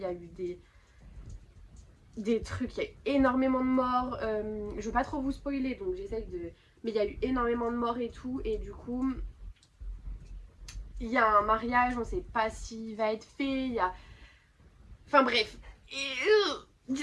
y a eu des des trucs, il y a eu énormément de morts. Je veux pas trop vous spoiler, donc j'essaye de... Mais il y a eu énormément de morts et tout, et du coup, il y a un mariage, on sait pas s'il va être fait, il y a... Enfin bref. Et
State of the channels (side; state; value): both; identical; correlation 1.00